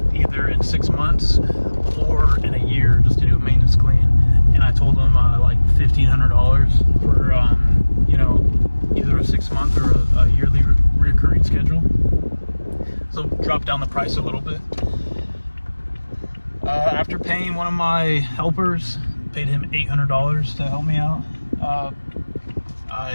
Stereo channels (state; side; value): inverted; both; correlation -1.00